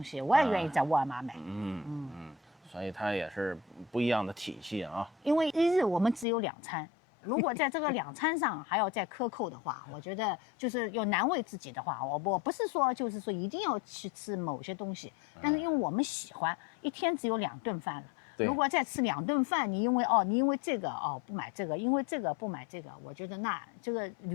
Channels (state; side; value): drops out; right; at 6.2 s